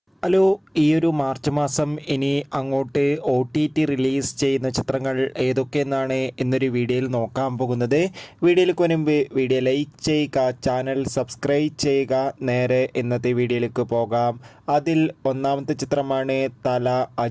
Hello, ഈ ഒരു March മാസം ഇനി അങ്ങോട്ട് OTT റിലീസ് ചെയ്യുന്ന ചിത്രങ്ങൾ ഏതൊക്കെയെന്നാണ് എന്നൊരു വീഡിയോയിൽ നോക്കാൻ പോകുന്നത്. വീഡിയോയിലേക്ക് മുൻപ് വീഡിയോ ലൈക്ക് ചെയ്യുക, ചാനൽ സബ്സ്ക്രൈബ് ചെയ്യുക. നേരെ ഇന്നത്തെ വീഡിയോയിലേക്ക് പോകാം. അതിൽ ഒന്നാമത്തെ ചിത്രമാണ് തല.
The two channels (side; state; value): both; identical; correlation 1.00